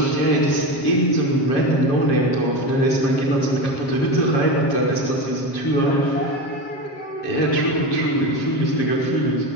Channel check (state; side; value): late; right; 7.4 ms